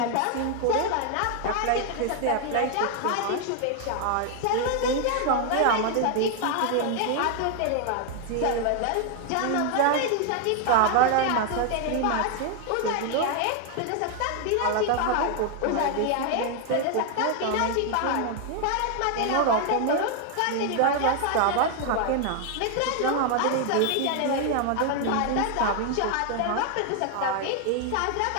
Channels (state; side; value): different; both; correlation 0.00